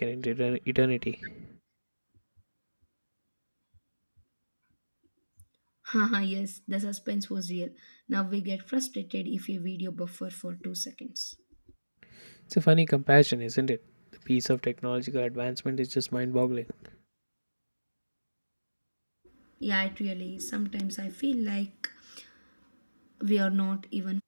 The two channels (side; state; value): both; inverted; correlation -1.00